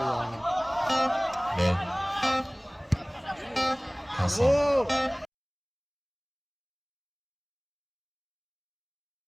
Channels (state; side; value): identical; both; correlation 1.00